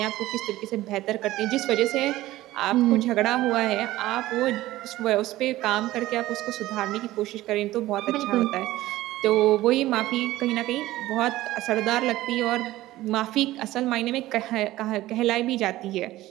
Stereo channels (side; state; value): left; quieter; 16.4 dB